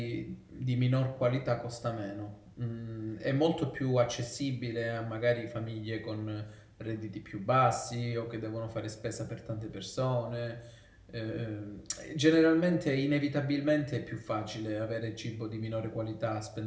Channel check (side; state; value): both; identical; correlation 1.00